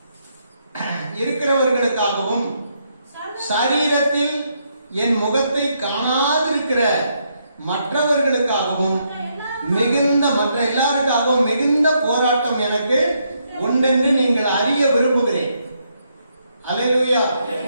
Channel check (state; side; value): inverted; both; correlation -0.76